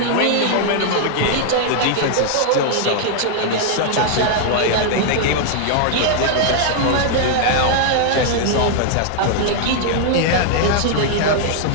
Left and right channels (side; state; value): both; different; correlation 0.00